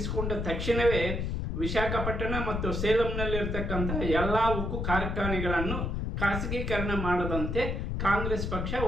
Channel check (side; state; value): left; noise; rumble, 2 dB below the sound